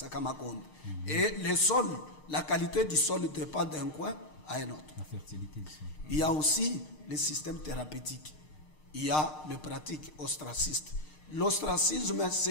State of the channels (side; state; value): right; late; 6.6 ms